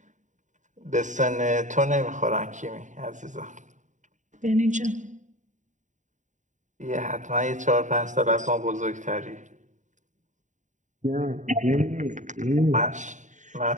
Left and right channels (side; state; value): left; late; 0.36 ms